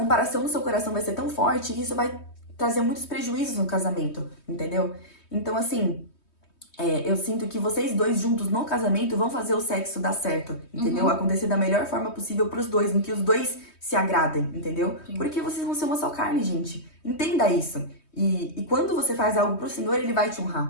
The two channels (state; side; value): late; right; 3.2 ms